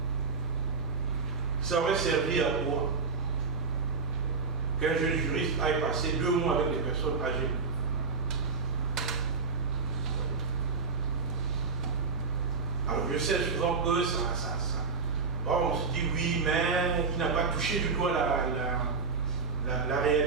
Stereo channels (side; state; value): left; quieter; 4.8 dB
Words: Ça aurait servi à quoi qu'un jeune juriste aille passer 2 mois avec des personnes âgées? Alors je sais souvent que bon, on se dit oui, mais il n'a pas touché du doigt la